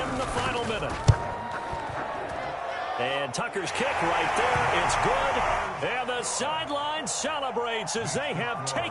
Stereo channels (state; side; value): identical; both; correlation 1.00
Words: the final minute. And Tucker's kick right there. It's good. And the sideline celebrates as they have